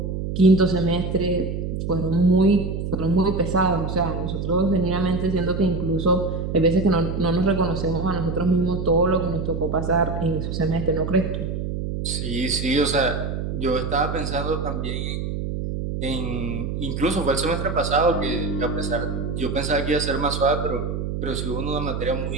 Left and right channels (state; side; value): noise; right; hum, 3 dB below the sound